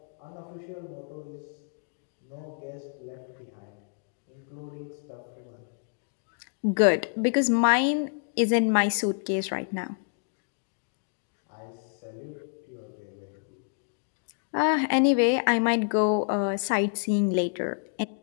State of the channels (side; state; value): right; silent; digital silence